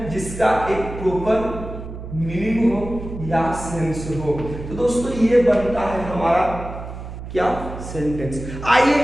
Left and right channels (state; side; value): noise; right; hum, 10 dB below the sound